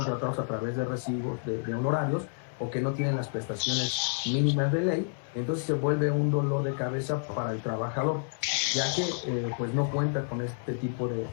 a través de recibos de honorarios, o que no tienen las prestaciones mínimas de ley, entonces se vuelve un dolor de cabeza para el trabajador, ya que pues no cuenta con este tipo de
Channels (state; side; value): silent; right; 58 dB below the other